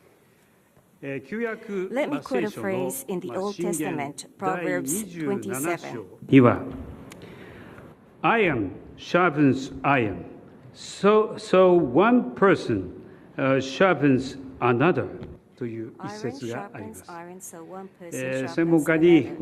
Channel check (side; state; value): both; identical; correlation 1.00